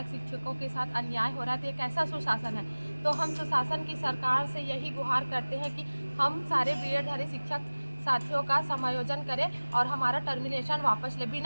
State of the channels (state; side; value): inverted; both; correlation -1.00